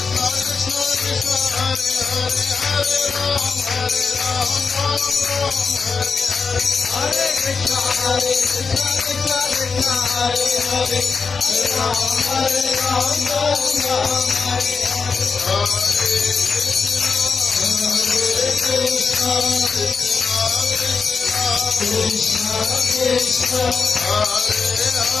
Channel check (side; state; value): right; quieter; 5.1 dB